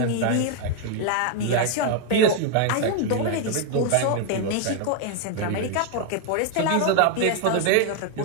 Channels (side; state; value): both; different; correlation 0.00